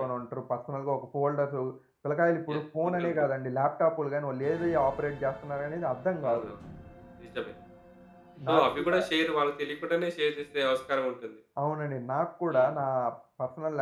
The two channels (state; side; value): identical; both; correlation 1.00